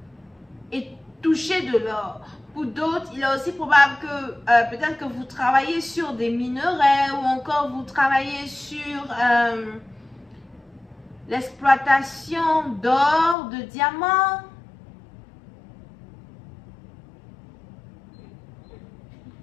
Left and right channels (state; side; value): drops out; right; at 13.4 s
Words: et toucher de l'or. Pour d'autres, il est aussi probable que peut-être que vous travaillez sur des minerais ou encore vous travaillez sur l'exploitation d'or, de diamants.